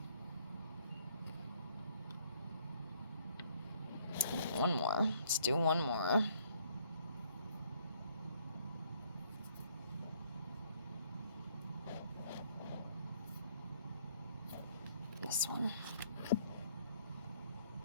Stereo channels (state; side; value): inverted; both; correlation -0.64